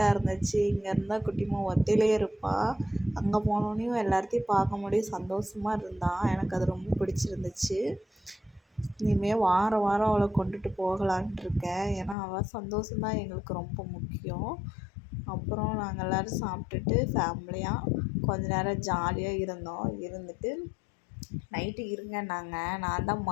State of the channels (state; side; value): drops out; right; at 12.2 s